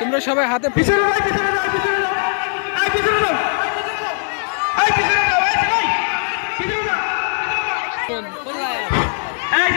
সবাই হাতে পিছনে যাও, পিছনে যাও, পিছনে যাও, এই পিছনে যাও, এই পিছনে যাও, এই সবাই পিছনে যাও, এই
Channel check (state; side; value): silent; right; digital silence